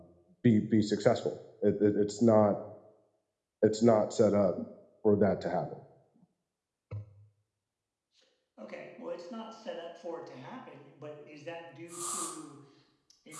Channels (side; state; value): both; identical; correlation 1.00